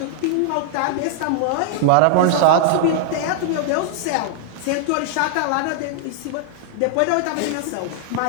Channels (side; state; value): both; different; correlation -0.01